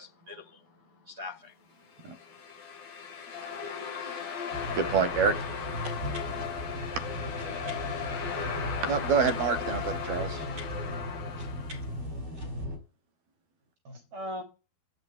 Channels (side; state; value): left; late; 12 ms